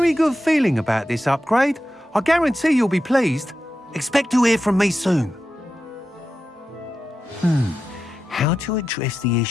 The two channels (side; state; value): both; normal; correlation 0.90